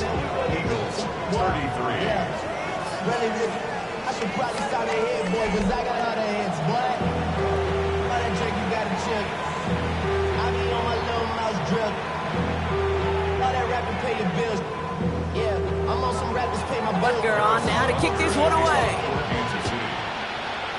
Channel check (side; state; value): both; identical; correlation 1.00